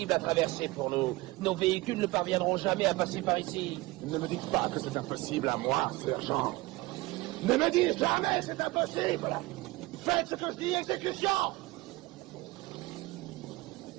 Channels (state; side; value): quieter; left; 21.1 dB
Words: à traverser pour nous. Nos véhicules ne parviendront jamais à passer par ici. Ne me dites pas que c'est impossible à moi, sergent. Ne me dites jamais c'est impossible! Faites ce que je dis, exécution!